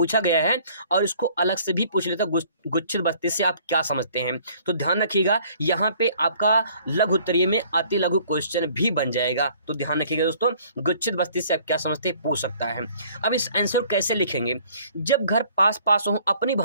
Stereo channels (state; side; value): inverted; both; correlation -0.57